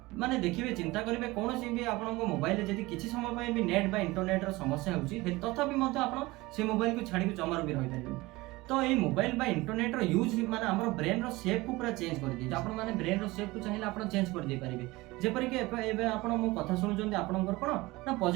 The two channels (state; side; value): quieter; left; 21.0 dB